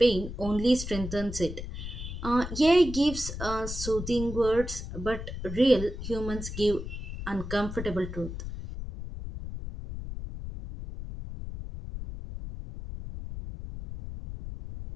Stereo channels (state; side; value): noise; left; rumble, 8 dB below the sound